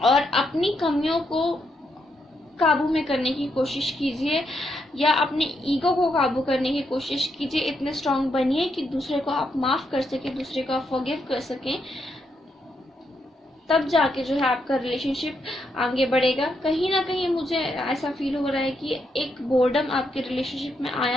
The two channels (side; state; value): both; normal; correlation 0.79